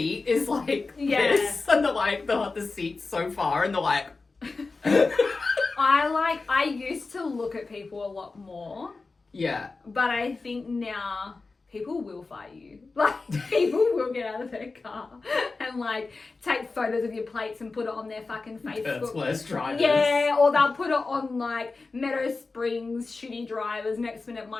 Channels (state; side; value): quieter; right; 3.9 dB